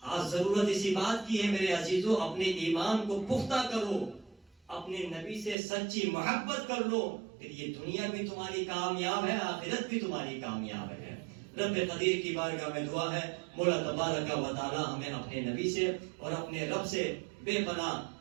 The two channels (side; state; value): left; drops out; at 5.6 s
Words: آج ضرورت اسی بات کی ہے میرے عزیزوں، اپنے ایمان کو پختہ کرو، اپنے نبی سے سچی محبت کر لو، پھر یہ دنیا بھی تمہاری کامیاب ہے، آخرت بھی تمہاری کامیاب ہے. رب قدیر کی بارگاہ میں دعا ہے مولا تبارک و تعالی ہمیں اپنے نبی سے اور اپنے رب سے بے پناہ